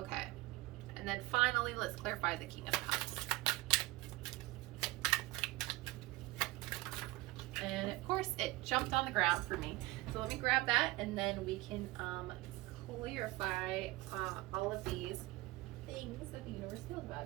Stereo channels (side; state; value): left; quieter; 19.9 dB